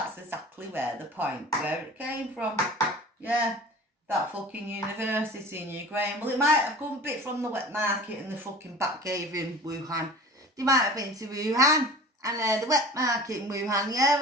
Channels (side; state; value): both; normal; correlation 0.40